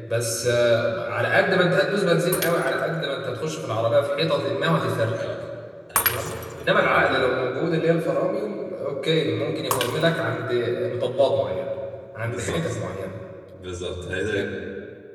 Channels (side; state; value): both; identical; correlation 1.00